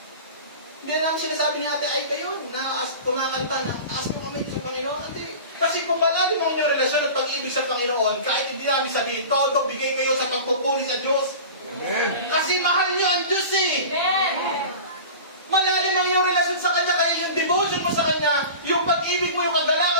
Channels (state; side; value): inverted; both; correlation -0.35